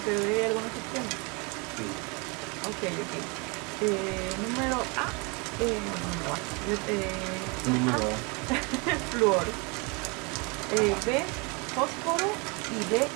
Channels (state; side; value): quieter; left; 30.4 dB